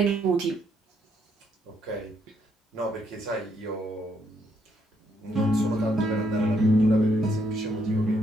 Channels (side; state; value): both; normal; correlation 0.73